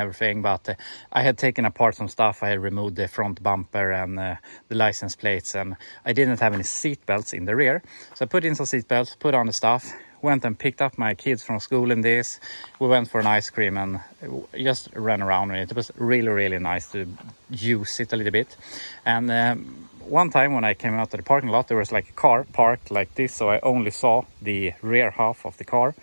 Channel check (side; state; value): both; inverted; correlation -1.00